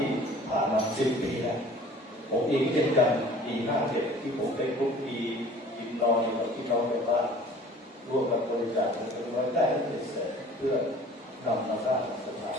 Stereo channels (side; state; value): both; normal; correlation 0.48